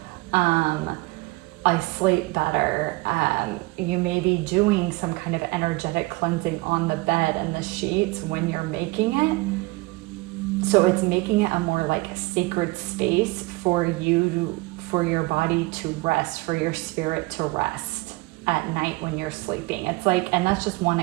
I sleep better. You may be doing some kind of energetic cleansing on the bed and the sheets when you're making it. So it's making it a more like sacred space for you, for your body to rest, for your spirit to rest at night when you're sleeping. It's like, and that's just one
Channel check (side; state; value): left; quieter; 23.5 dB